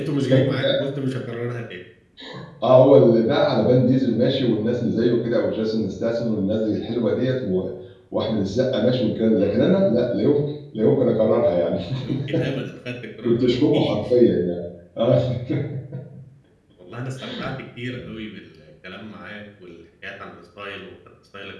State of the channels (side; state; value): both; identical; correlation 1.00